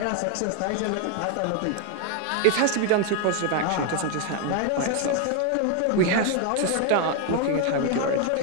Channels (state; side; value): different; both; correlation 0.01